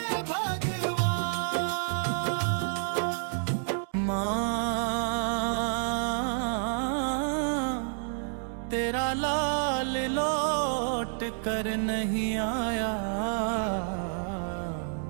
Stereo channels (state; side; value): silent; left; digital silence